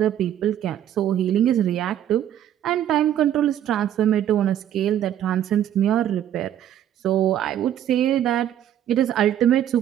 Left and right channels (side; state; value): left; quieter; 10.9 dB